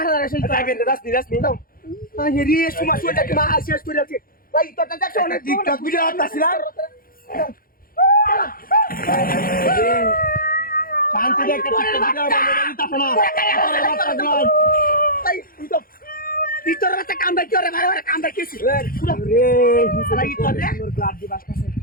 আছে। যাইবে যাস নি দাও এই রে সুমা সুটা কি মা শেষ করে আছে। এই তোরটা দেখছো না টিকটক ভিডিও করতেছিলাম শান্তি রে একটা টিকটক ভিডিও বানাই দিতাছ না এই তুই তো ভিতরে একটা কামড়া কি করে মারা কামড়া কিছি। রে শালা এই তোর রে সুন্দর গ্লাস দি বাসতাছে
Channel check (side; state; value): right; late; 0.42 ms